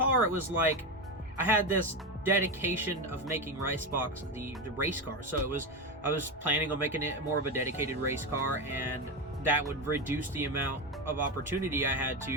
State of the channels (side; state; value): both; normal; correlation 0.15